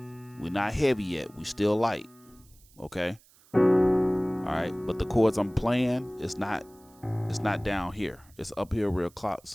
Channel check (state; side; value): noise; right; hiss, 28 dB below the sound